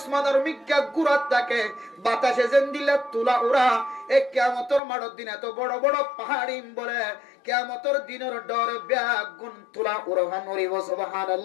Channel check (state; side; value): drops out; right; at 4.8 s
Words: মিক্কা গুড়াত থাকে, বাতাসে যেন দিলে তুলা উড়া। এ কিয়ামতের মাঠের দিন এত বড় বড় পাহাড়ি বলে কিয়ামতের দিনের ডরে ব্যাগুন তুলা উড়ান উড়িব।